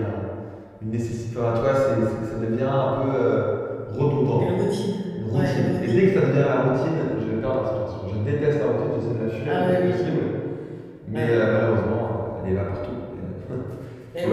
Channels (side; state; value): both; identical; correlation 1.00